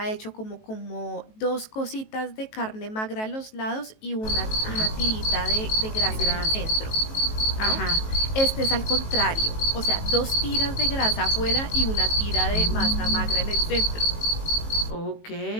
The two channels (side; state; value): right; late; 18 ms